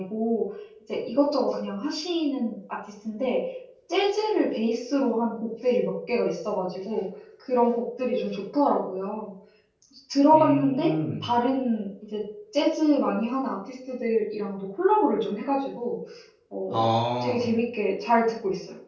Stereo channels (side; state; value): both; identical; correlation 1.00